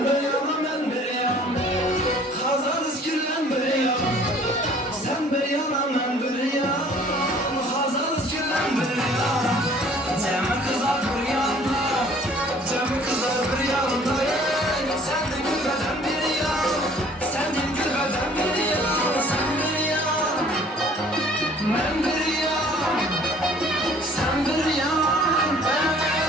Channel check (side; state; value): both; normal; correlation 0.54